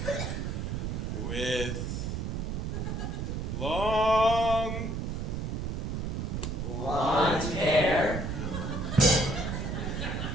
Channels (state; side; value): noise; right; rumble, 2 dB below the sound